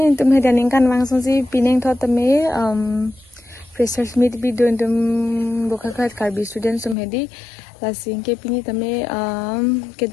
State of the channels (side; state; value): right; drops out; at 7.0 s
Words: hedaning kan langsung si pineng thot me freshers meet video tum bokhakat karbi students tum hedi lasing ke pini tame